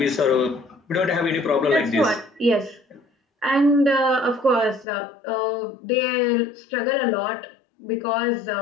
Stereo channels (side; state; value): right; drops out; at 4.9 s